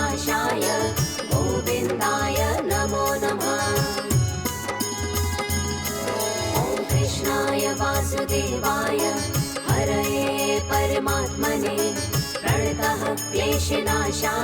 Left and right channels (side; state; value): both; identical; correlation 1.00